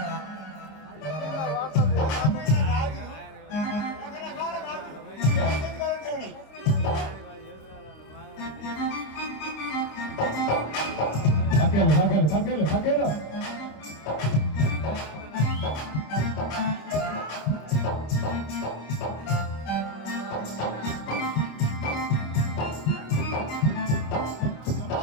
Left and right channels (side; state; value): right; late; 26 ms